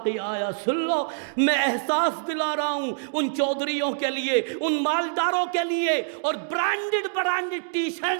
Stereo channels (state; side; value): silent; left; digital silence